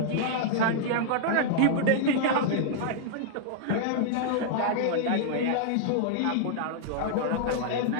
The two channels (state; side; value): different; both; correlation -0.01